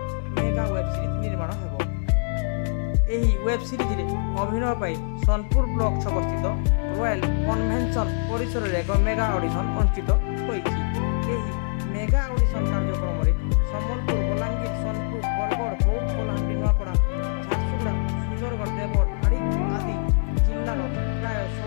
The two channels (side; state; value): right; silent; 60 dB below the other